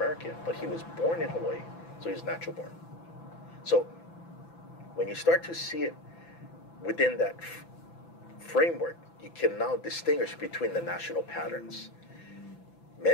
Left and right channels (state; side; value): late; right; 5.9 ms